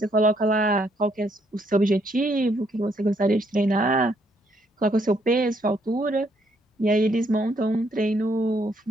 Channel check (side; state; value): both; normal; correlation 0.71